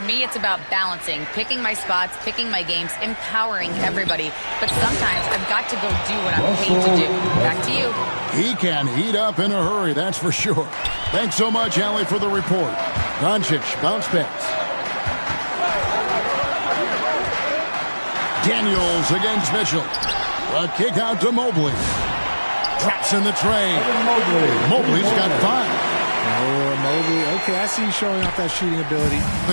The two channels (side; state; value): both; inverted; correlation -1.00